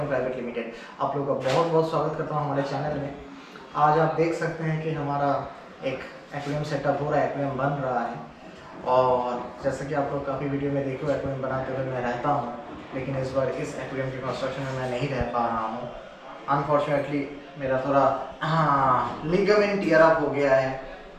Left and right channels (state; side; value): identical; both; correlation 1.00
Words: private limited. आप लोगों का बहुत बहुत स्वागत करता हूं हमारे चैनल में। आज आप देख सकते हैं कि हमारा एक एक्वेरियम सेटअप हो रहा है, एक्वेरियम बन रहा है। और जैसे कि आप लोग काफ़ी वीडियो में देखो, एक्वेरियम बनाते हुए मैं रहता हूँ, लेकिन इस बार इस एक्वेरियम के कंस्ट्रक्शन में मैं नहीं रह पा रहा हूँ। अनफॉर्चुनेटली मेरा थोड़ा लिगामेंट टियर अप हो गया है,